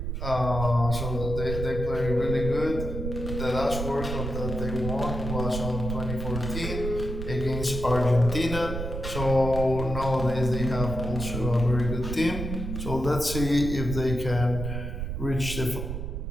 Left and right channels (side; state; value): right; noise; rumble, 4 dB below the sound